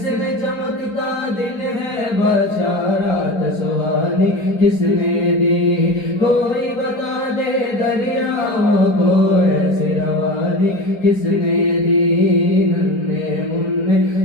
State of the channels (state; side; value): late; right; 4.6 ms